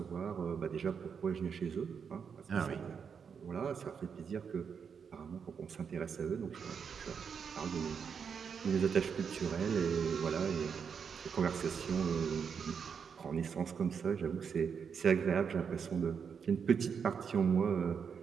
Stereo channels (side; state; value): left; quieter; 6.6 dB